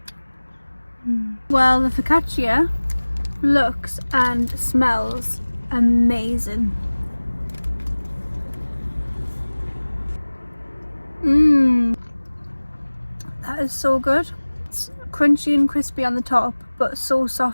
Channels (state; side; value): inverted; both; correlation -1.00